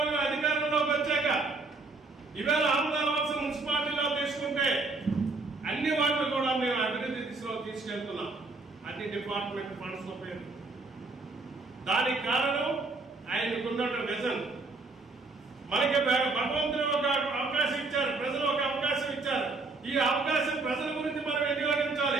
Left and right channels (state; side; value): quieter; left; 3.6 dB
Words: అధికారంలోకి వచ్చాక ఈవేళ ఆంధ్రప్రదేశ్ మున్సిపాలిటీలో తీసుకుంటే అన్ని వాటిని కూడా మేము అభివృద్ధి దిశలో తీసుకెళ్తున్నాం, అన్ని డిపార్ట్మెంట్ ఫండ్స్ పేరు. దానికి కారణం ఆయనకున్న విజన్. మనకి భగవంతుడు ఒక అవకాశం ఇచ్చారు, ప్రజలు ఒక అవకాశం ఇచ్చారు. ఈ అవకాశం ప్రజల గురించి మనం